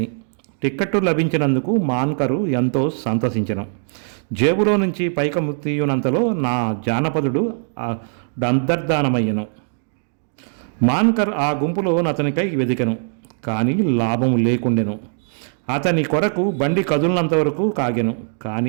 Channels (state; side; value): silent; left; digital silence